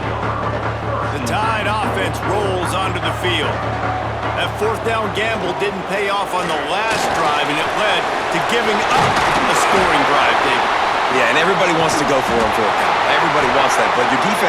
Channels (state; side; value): identical; both; correlation 1.00